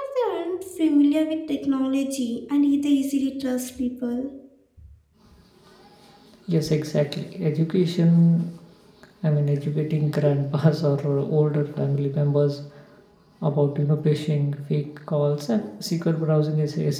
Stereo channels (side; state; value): both; identical; correlation 1.00